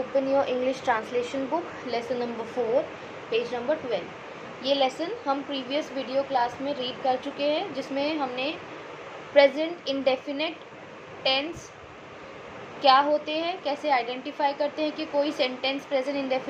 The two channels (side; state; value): both; identical; correlation 1.00